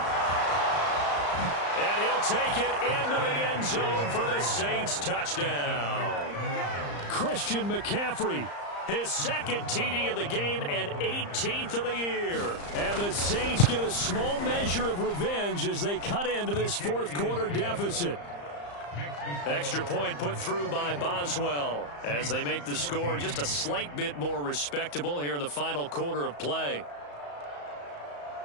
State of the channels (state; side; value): late; right; 35 ms